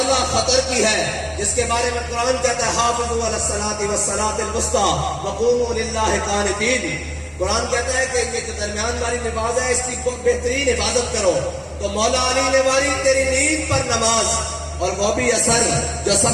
خطر کی ہے، جس کے بارے میں قرآن کہتا ہے حافظوا علی الصلاۃ والصلاۃ الوسطیٰ وقوموا للہ قانتین. قرآن کہتا ہے کہ یہ جو درمیان والی نماز ہے اس کی بہترین حفاظت کرو. تو مولا علی نے ماری تیری نیند پر نماز، اور وہ بھی اثر جو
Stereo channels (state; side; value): identical; both; correlation 1.00